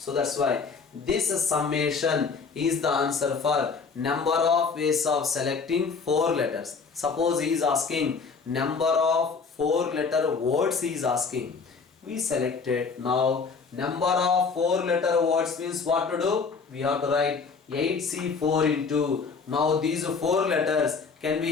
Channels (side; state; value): right; quieter; 5.1 dB